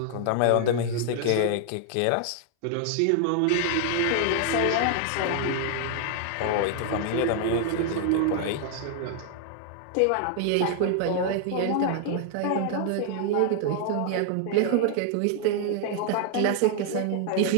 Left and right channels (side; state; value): both; different; correlation 0.00